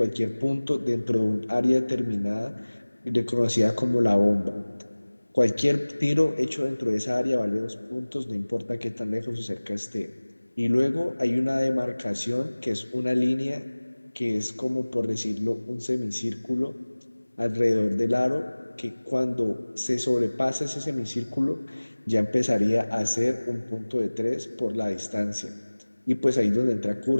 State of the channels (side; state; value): both; inverted; correlation -1.00